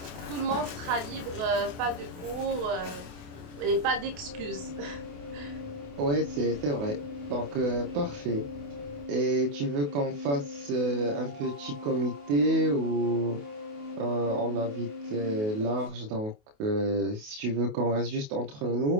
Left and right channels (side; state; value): left; late; 28 ms